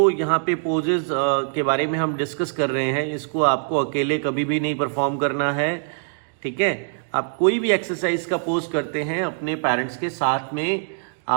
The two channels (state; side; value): silent; left; digital silence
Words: यहाँ पे पोजेस के बारे में हम डिस्कस कर रहे हैं, इसको आपको अकेले कभी भी नहीं परफॉर्म करना है, ठीक है। आप कोई भी एक्सरसाइज का पोज करते हैं अपने पेरेंट्स के साथ में